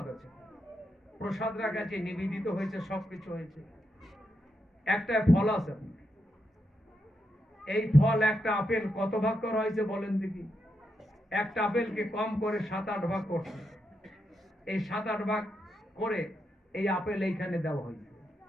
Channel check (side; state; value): both; normal; correlation 0.84